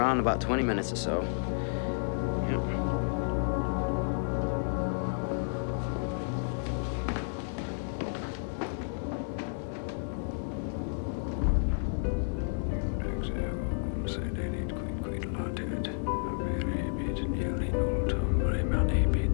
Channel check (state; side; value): silent; right; 57 dB below the other